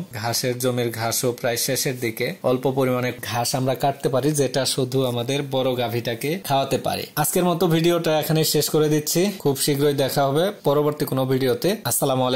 ঘাসের জমির ঘাসও প্রায় শেষের দিকে। অল্প পরিমাণে ঘাস আমরা কাটতে পারি, যেটা শুধু আমাদের বড় গাভীটাকে খাওয়াতে পারি। আজকের মতো ভিডিওটা এখানে শেষ করে দিচ্ছি। খুব শীঘ্রই দেখা হবে পরবর্তী কোনো ভিডিওতে। আসসালামু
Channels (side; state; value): both; identical; correlation 1.00